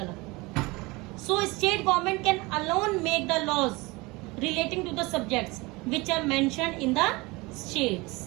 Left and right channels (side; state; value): left; quieter; 23.7 dB